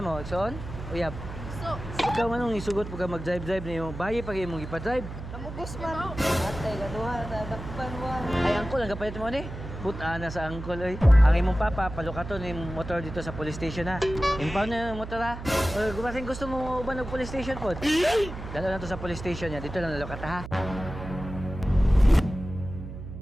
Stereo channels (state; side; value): noise; right; hum, 10 dB below the sound